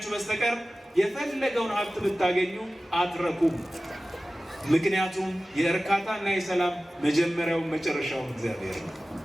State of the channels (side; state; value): both; normal; correlation 0.96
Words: በስተቀር የፈለገውን ሀብት ብታገኙ አትረኩም። ምክንያቱም የእርካታና የሰላም መጀመሪያውን መጨረሻውን እግዚአብሔር ነው።